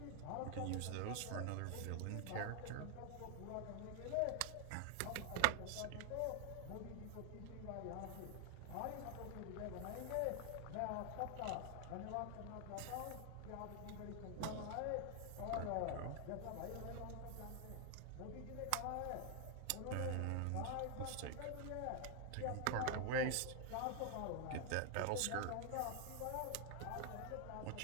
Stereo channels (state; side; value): different; both; correlation 0.00